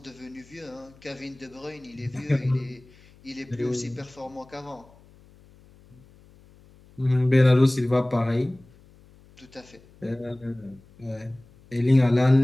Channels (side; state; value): left; noise; hum, 26 dB below the sound